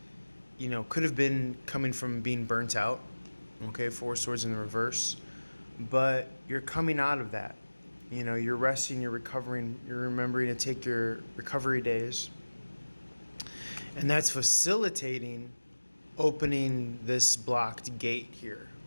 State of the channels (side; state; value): both; inverted; correlation -1.00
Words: could have been coming from being burnt out. Okay, Four Swords in the reverse. But you're coming out of that. You're resting, you're recovering, you're remembering to take your recovery days. And that's facilitating opening this blocked gate here